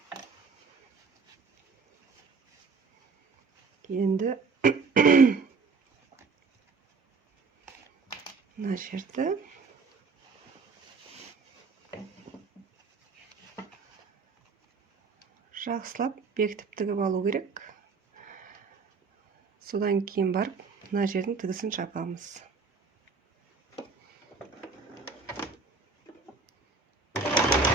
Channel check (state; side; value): quieter; left; 4.6 dB